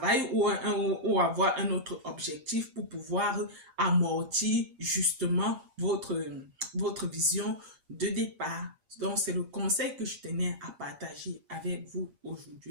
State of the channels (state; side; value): late; left; 8.5 ms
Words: ou avoir un autre objectif pour pouvoir amortir justement votre vision de départ. Donc, c'est le conseil que je tenais à partager avec vous